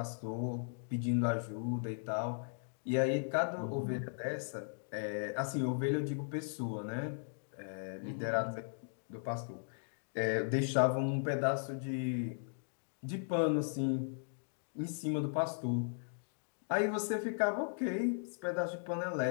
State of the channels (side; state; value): right; silent; digital silence